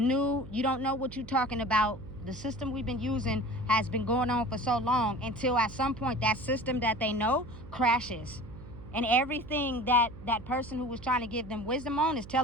You don't know what you're talking about. The system we've been using has been going on for so long until at some point that system that they know crashes. And everything that person who was trying to give them wisdom on is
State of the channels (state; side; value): noise; right; hum, 15 dB below the sound